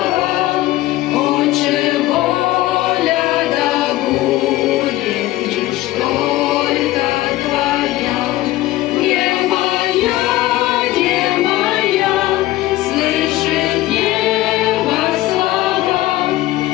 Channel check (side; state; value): right; quieter; 16.4 dB